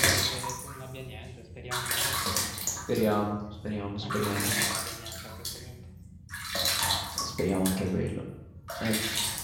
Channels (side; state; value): both; identical; correlation 1.00